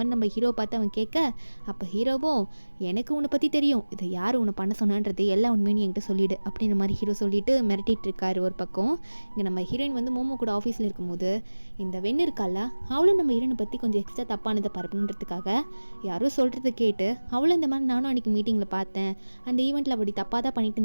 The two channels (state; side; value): inverted; both; correlation -1.00